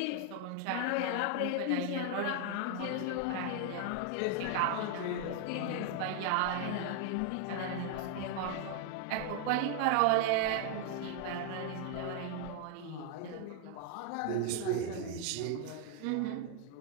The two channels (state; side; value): different; both; correlation 0.00